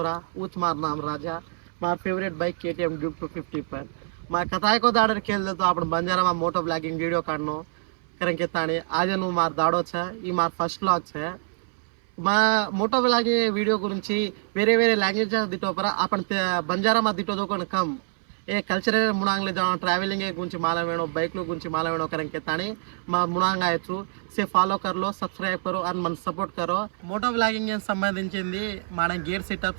ऊच मार नाम राजा मार फेवरेट बाइक KTM ड्यूक 250 पर मार कथाय को दाड़र खेल दे तो आपण बंजारा में मोटो ब्लॉगिंग वीडियो काढनो कारण के ताणी आज नु मार दाड़ो छे ई मार फर्स्ट व्लॉग छे మా మోటో బ్లాగింగ్ వీడియో గురించి వేరే వేరే లాంగ్వేజ్ దిటోపర आपण बंजारा में दिटो दोकन कम ए कल्चरल मुनांगले जाओ ट्रैवलिंग गुరించి माला वेणो बाइक लो गुరించి माला वेणो करन के ताणी मा मुनांग आयचु से फॉलो कर लो सब्सक्राइब करो और मन सपोर्ट करो मोटो ब्लॉगिंग संबंधिंचिंदी మన గేర్ సెటప్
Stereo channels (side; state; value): left; silent; 61 dB below the other